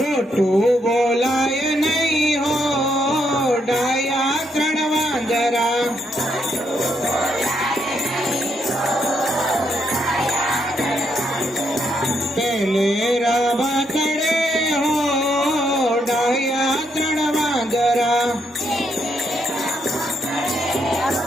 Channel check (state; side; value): normal; both; correlation 0.76